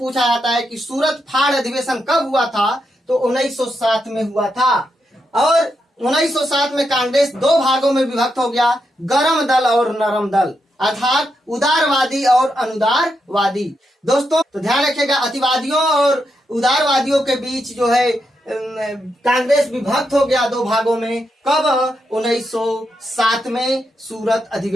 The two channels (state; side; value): normal; both; correlation 0.83